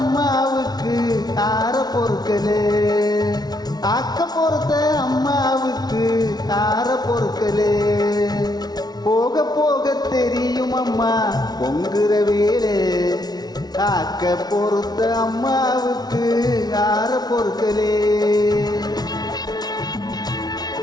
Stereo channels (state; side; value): late; right; 0.19 ms